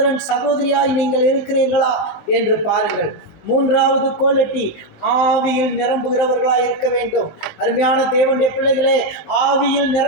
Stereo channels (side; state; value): right; late; 19 ms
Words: சகோதரியாய் நீங்கள் இருக்கிறீர்களா என்று பாருங்கள். 3வது குவாலிட்டி, ஆவியில் நிரம்புகிறவர்களாக இருக்க வேண்டும். அருமையான தேவனுடைய பிள்ளைகளே, ஆவியில்